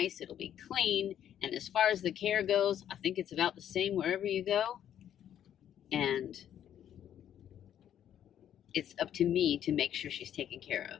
it'll be clean, and as far as the care goes, I think it's about the same wherever you go. And it's up to me to make sure she's taken care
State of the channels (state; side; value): quieter; right; 10.2 dB